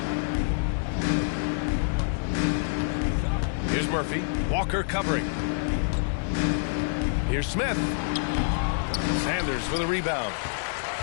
Here's Murphy. Walker covering. Here's Smith. Sanders with a rebound.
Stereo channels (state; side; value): silent; right; digital silence